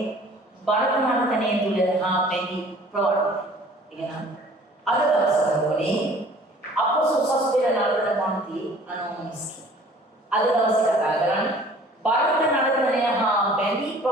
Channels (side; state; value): both; normal; correlation 0.51